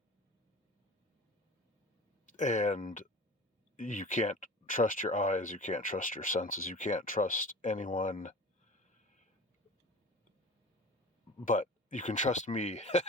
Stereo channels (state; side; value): normal; both; correlation 0.38